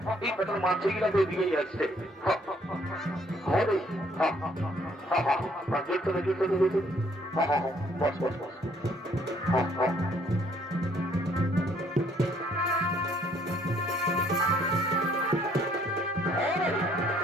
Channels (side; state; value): both; normal; correlation 0.64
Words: এই পেটার মাছগুলা তো এদিকেই আসছে হ্যাঁ রে জুড়তে না জুড়তে জুড়তে বস বস বস